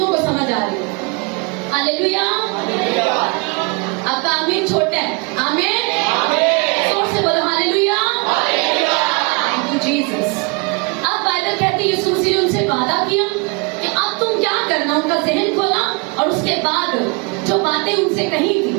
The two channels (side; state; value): left; quieter; 31.1 dB